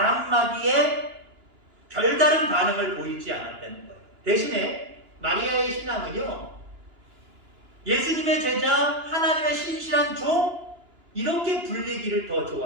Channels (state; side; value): late; left; 2.9 ms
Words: 한마디에 별다른 반응을 보이지 않았다는 거예요. 대신에 마리아의 신앙은요, 예수님의 제자, 하나님의 신실한 종, 이렇게 불리기를 더